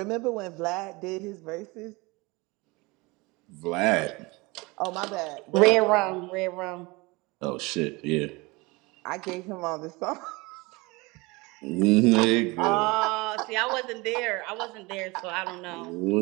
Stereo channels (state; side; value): quieter; left; 24.5 dB